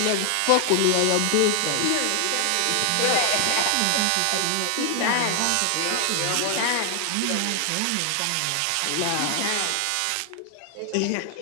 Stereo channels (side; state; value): both; different; correlation 0.00